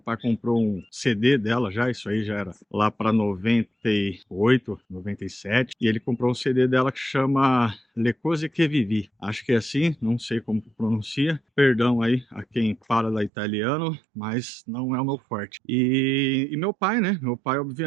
pai comprou um CD dela já, isso aí já era lá para 98, 97, e ele comprou um CD dela que chama Le Cose Che Vivi. Acho que é assim, não sei como pronuncia. Perdão aí a quem fala da italiano, mas não é o meu forte. E meu pai, né? Meu pai,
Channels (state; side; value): drops out; left; at 13.3 s